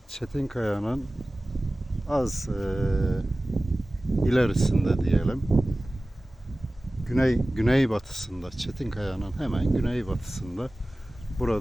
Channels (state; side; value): normal; both; correlation 0.97